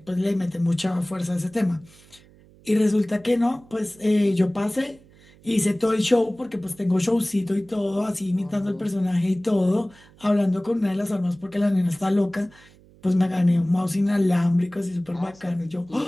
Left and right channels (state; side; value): noise; right; hum, 26 dB below the sound